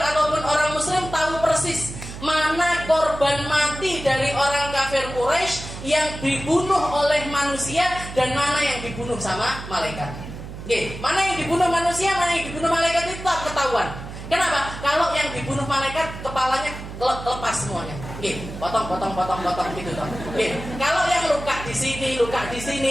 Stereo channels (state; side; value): noise; right; hum, 11 dB below the sound